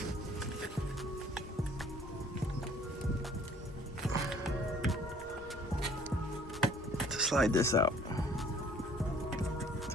To slide this out. That's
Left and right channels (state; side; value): normal; both; correlation 0.56